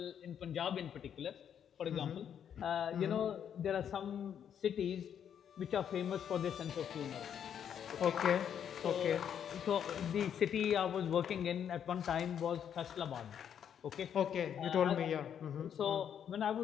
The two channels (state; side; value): quieter; right; 8.7 dB